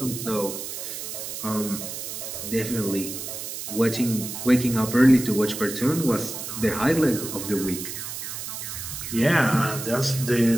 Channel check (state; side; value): noise; right; hiss, 7 dB below the sound